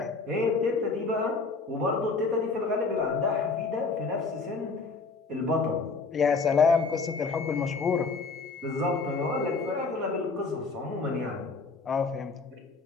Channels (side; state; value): right; quieter; 4.2 dB